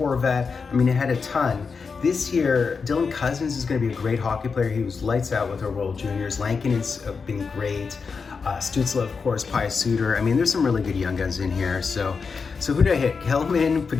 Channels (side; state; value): right; quieter; 5.2 dB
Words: I mean, it had a ton. This year, Dylan Cousins is going to be a great hockey player. He was lights out with our World Juniors. Lankin has been great. Stützle, of course, Pius Suter. I mean, there's some really good Young Guns in here. So who did I hit? Hellman,